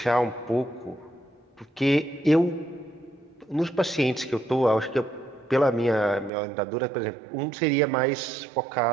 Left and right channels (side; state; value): left; drops out; at 6.3 s